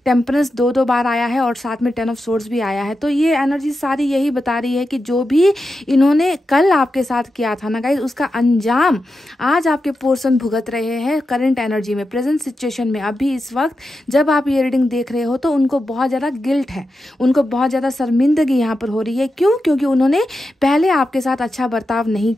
टेम्परेंस 2 बार आया है और साथ में 10 ऑफ सोर्ड्स भी आया है। तो ये एनर्जी सारी यही बता रही है कि जो भी इन्होंने कल आपके साथ किया था ना गाइस, उसका अंजाम आज आपके पर्सन भुगत रहे हैं करंट एनर्जी में, प्रेजेंट सिचुएशन में। अभी इस वक्त जब आप ये रीडिंग देख रहे हो तो उनको बहुत ज़्यादा गिल्ट है, उनको बहुत ज़्यादा शर्मिंदगी यहाँ पर हो रही है। क्यों? क्योंकि उन्होंने पहले आपके साथ अच्छा बर्ताव नहीं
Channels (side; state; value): both; normal; correlation 0.89